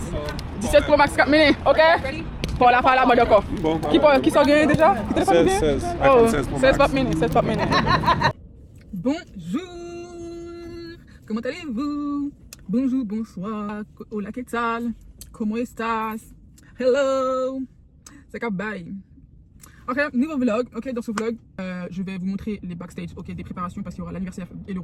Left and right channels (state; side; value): identical; both; correlation 1.00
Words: 17 Pro Max Cap Mini, ok? Pour la fala, d'accord. Qui s'en gagne déjà? 16. Oh, iPhone 16 Pro 16 Pop Max. Mini, 16 Pop Mini. Bonjour! Comment allez-vous? Bonjour, bonsoir. Hola, ¿qué tal? ¿Cómo estás? Hello! C'est Cap Bye. Ok, nouveau vlog. Ok, dans ce vlog, je vais vous montrer les backstage, ok, des préparations parce qu'il y aura l'anniversaire et